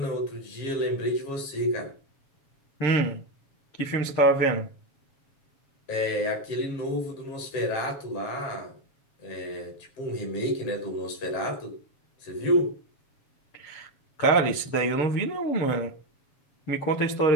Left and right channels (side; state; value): right; late; 7.2 ms